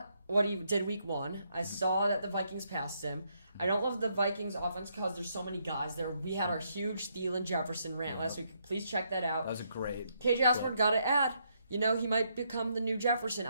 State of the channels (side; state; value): both; inverted; correlation -0.75